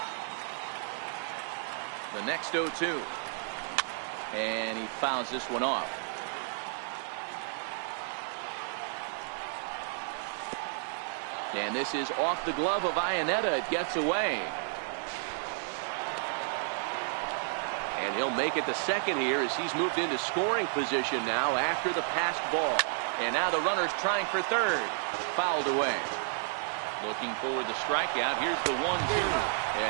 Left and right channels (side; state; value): left; silent; 57 dB below the other